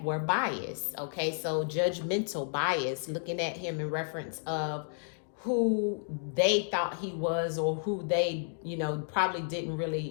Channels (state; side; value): silent; right; digital silence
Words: were biased, okay? So judgmental bias, looking at him in reference of who they thought he was, or who they, probably didn't